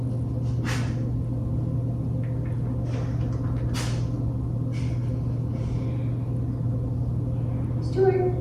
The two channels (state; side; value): identical; both; correlation 1.00